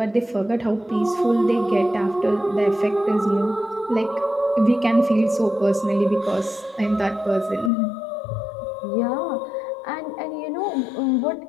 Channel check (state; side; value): drops out; right; at 7.7 s